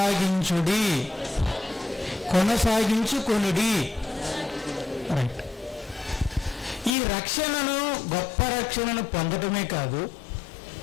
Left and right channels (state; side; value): drops out; right; at 7.0 s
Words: రైట్. ఈ రక్షణను, గొప్ప రక్షణను పొందటమే కాదు,